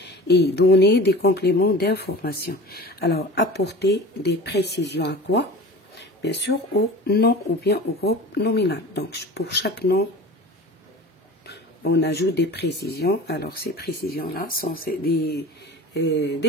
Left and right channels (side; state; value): both; normal; correlation 0.38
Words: et donner des compléments d'information. Alors, apporter des précisions à quoi? Bien sûr, au nom ou bien au groupe nominal. Donc, pour chaque nom, on ajoute des précisions. Alors, ces précisions-là sont